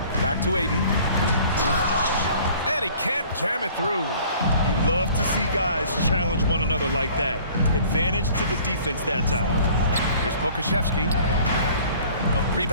Back to Ayton. And he can't jam it through. You love to see guys challenge one another like that. Advantage to the defense that time. Here's Pokuševski.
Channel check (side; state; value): both; inverted; correlation -0.51